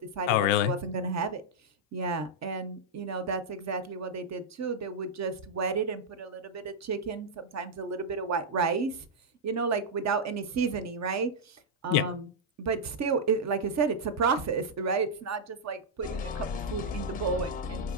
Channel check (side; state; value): both; normal; correlation -0.05